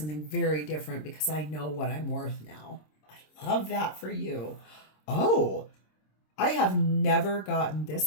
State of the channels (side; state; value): right; late; 26 ms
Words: very different because I know what I'm worth now. I love that for you. Oh, I have never gotten